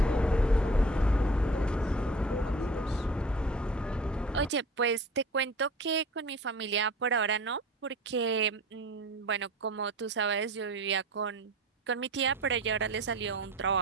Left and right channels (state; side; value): normal; both; correlation 0.41